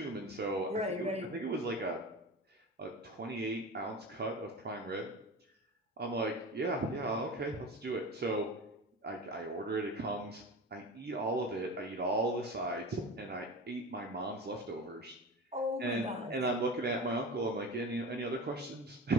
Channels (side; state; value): both; normal; correlation 0.31